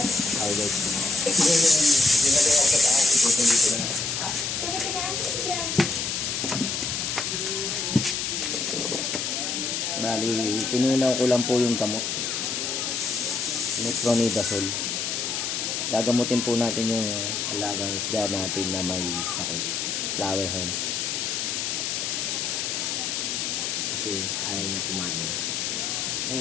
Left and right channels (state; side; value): noise; left; hiss, 2 dB below the sound